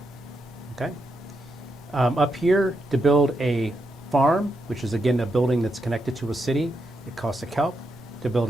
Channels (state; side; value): normal; both; correlation 0.83